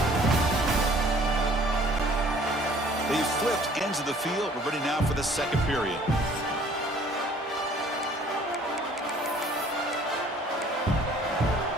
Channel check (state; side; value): normal; both; correlation 0.55